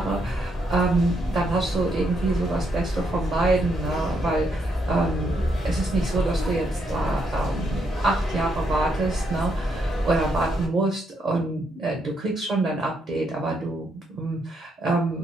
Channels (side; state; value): both; normal; correlation 0.77